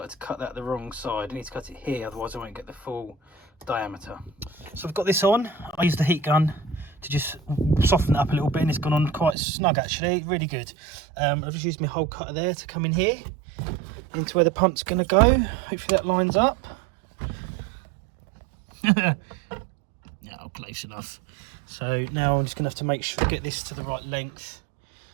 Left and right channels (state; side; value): drops out; left; at 9.3 s